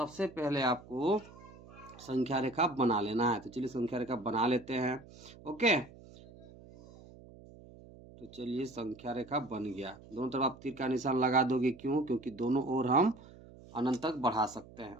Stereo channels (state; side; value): noise; right; hum, 20 dB below the sound